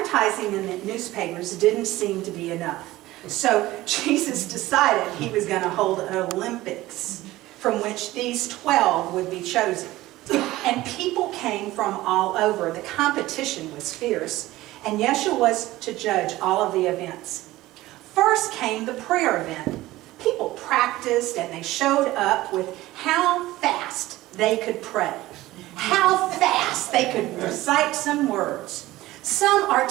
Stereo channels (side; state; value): left; quieter; 17.3 dB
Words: in the newspapers didn't seem to be enough. So Jesus decided he was going to hold an Olympics from which these 12 would be chosen. And people came from all over. The competition was fierce, and Yeshua was to judge all of the events. First came the prayer event. People practiced and they showed up with how fast they could pray, how fast they could recite some words. Some